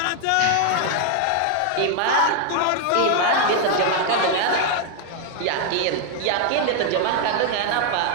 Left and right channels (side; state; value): both; different; correlation 0.00